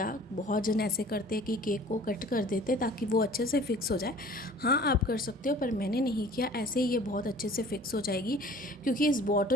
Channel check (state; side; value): normal; both; correlation 0.48